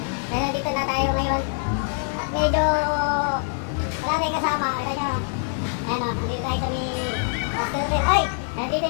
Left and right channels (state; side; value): silent; right; digital silence